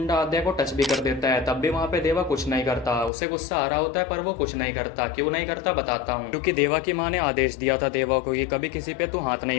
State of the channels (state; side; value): drops out; right; at 3.1 s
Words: आद्या को टच भी कर देता है, तब भी वहाँ पे देवा कुछ नहीं करता। उसे गुस्सा आ रहा होता है पर वो कुछ नहीं करता। क्यों नहीं करता बताता हूँ, क्योंकि देवा की माँ ने आदेश दिया था देवा को कि कभी किसी पे तू हाथ